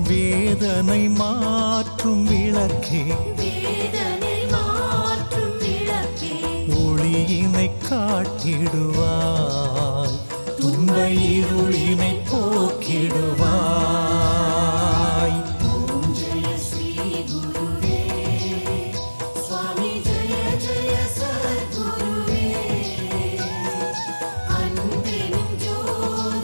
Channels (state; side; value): inverted; both; correlation -1.00